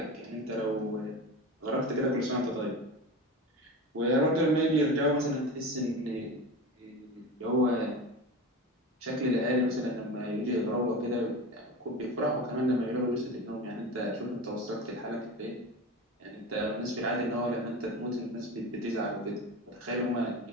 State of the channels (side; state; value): both; normal; correlation 0.28